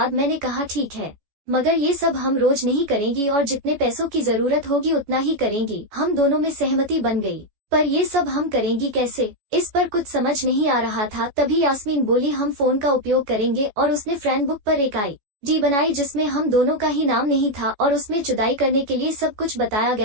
मैंने कहा, ठीक है, मगर ये सब हम रोज नहीं करेंगी और जितने पैसों की जरूरत होगी उतना ही करेंगी। हम दोनों में सहमति बन गई, पर ये सब हम करेंगी कैसे, इस पर कुछ समझ नहीं आ रहा था। तभी यास्मीन बोली, हम फोन का उपयोग करेंगे। और उसने फ्रेंड बुक पर एक ID बनाई जिसमें हम दोनों का ही नाम नहीं था और उसमें जुदाई करने के लिए सब कुछ बताया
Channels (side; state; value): left; late; 14 ms